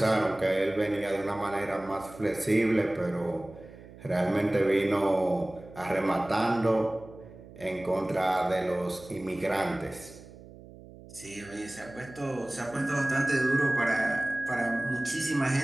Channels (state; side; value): noise; right; hum, 19 dB below the sound